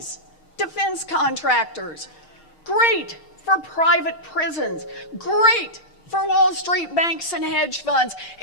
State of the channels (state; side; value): late; right; 6.5 ms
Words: defense contractors, great for private prisons, great for Wall Street banks and hedge funds.